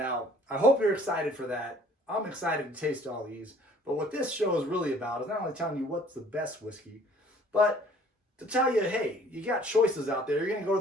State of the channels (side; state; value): both; normal; correlation 0.55